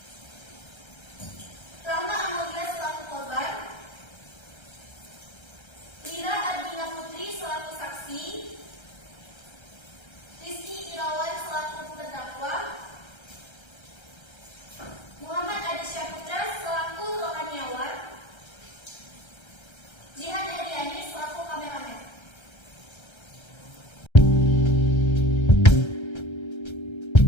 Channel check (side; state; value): right; late; 1.3 ms